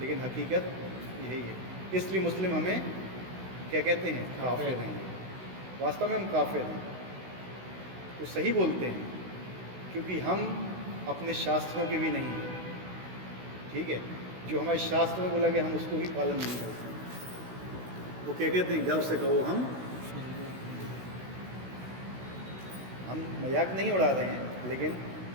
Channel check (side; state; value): left; late; 16 ms